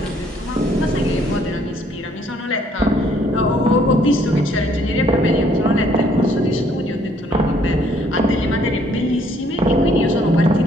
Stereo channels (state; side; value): normal; both; correlation 0.64